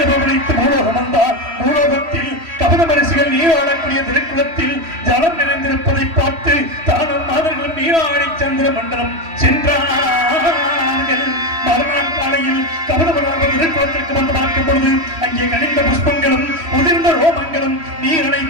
பவனித்து பூலோகம் வந்தார். பூலோகத்தில் கவனமரிசிகள் நீராடக்கூடிய திருக்குளத்தில் ஜலம் நிறைந்திருப்பதை பார்த்து தானும் மாதர்களும் நீராடி சந்திர மண்டலம் சென்றார்கள். மறுநாள் காலையில் கவனமராக திருக்குளத்திற்கு வந்து பார்க்கும் பொழுது அங்கே கனிந்த புஷ்பங்களும் உதிர்ந்த ரோமங்களும் நீர்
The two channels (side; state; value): left; late; 3.1 ms